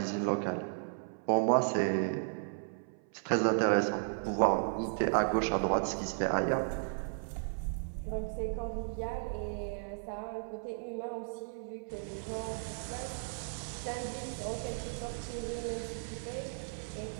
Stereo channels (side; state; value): left; silent; 55 dB below the other